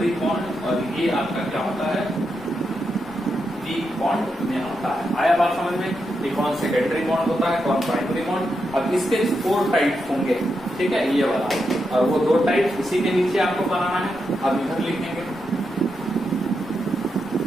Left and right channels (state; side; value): noise; left; rumble, 25 dB below the sound